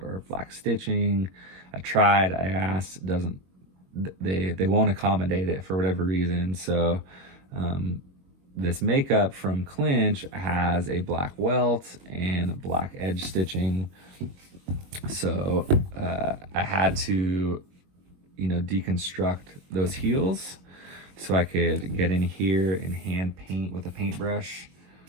or black stitching. I tried, I asked, they won't accommodate it for whatever reason. So this makeup from Clinch has a black welt and black edge stitching. So I had to, deconstruct those heels so I could get in here and hand paint with a paintbrush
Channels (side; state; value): left; late; 22 ms